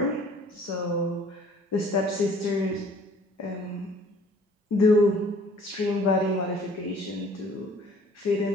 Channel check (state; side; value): normal; both; correlation 0.54